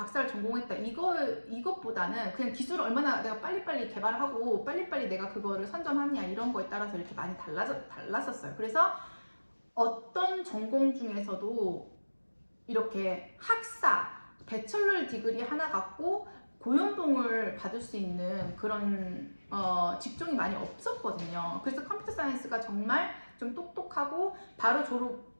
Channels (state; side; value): inverted; both; correlation -1.00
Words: 전공했다, 이것보다는 그냥 기술을 얼마나 내가 빨리빨리 개발하고 빨리빨리 내가 그거를 선점하느냐, 이런 거에 따라서 이렇게 많이 달랐었어요. 그래서 어떤 전공 중에서도 이렇게 학사, 배철러 디그리 하나 갖고 고연봉을 받을 수 있는 그런 직종이 많이 없었거든요. 그래서 컴퓨터 사이언스가 정말 좀 똑똑하고 바로